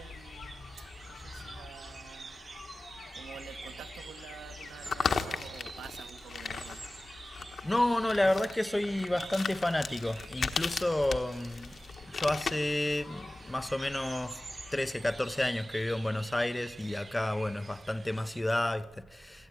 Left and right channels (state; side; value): normal; both; correlation 0.97